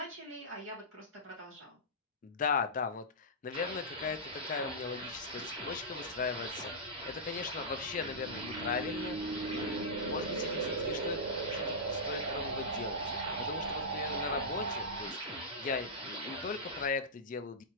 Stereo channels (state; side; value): normal; both; correlation -0.14